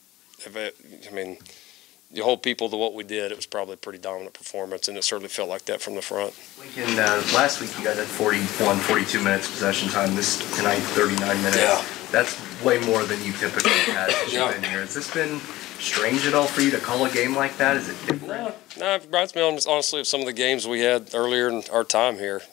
you hold people to what we did, it was probably a pretty dominant performance, and it certainly felt like that from the front. Lincoln, last week you guys had 42 minutes possession time. Tonight, 39 minutes. Yeah. That's way more than you typically had since you've been here. Has this been strange at all for you to call a game like that? Is it different? No, it reminds me honestly of some of the games we had earlier in our time here.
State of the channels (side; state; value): right; quieter; 17.2 dB